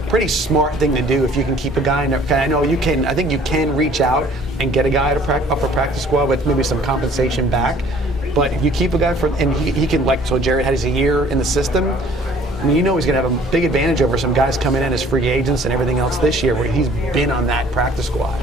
smart thing to do if you can keep a guy in there. I know you can. I think you can reach out and get a guy up a practice squad with maybe some compensation back. But if you keep a guy and he can, like, so Jared has a year in the system. I mean, he's going to have a big advantage over some guys coming in as free agents and everything else this year, where he's been on that practice squad.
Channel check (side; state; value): both; normal; correlation 0.54